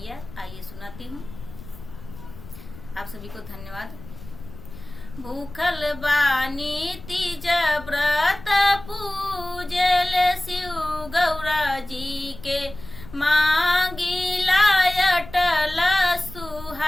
आइए सुनाती हूँ। आप सभी को धन्यवाद। भूखल बानी तीज व्रत पूजल शिव गौरा जी के, मांगिला अटल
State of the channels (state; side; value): noise; left; rumble, 16 dB below the sound